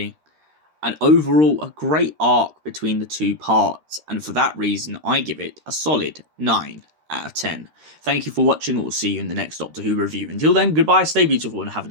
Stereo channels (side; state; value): left; late; 13 ms